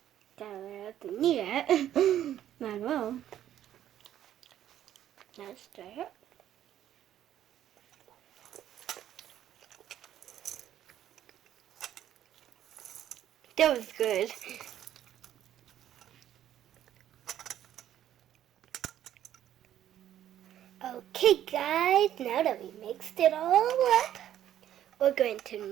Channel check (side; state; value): left; quieter; 11.5 dB